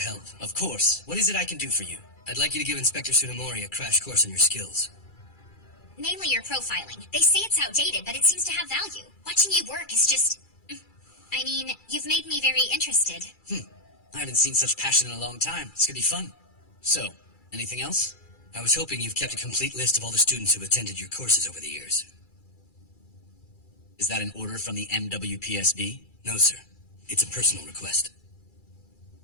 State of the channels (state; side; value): late; right; 2.3 ms